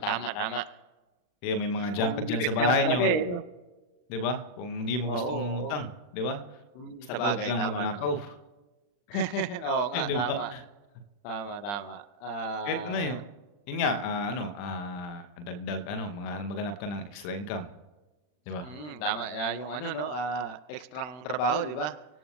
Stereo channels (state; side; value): late; right; 40 ms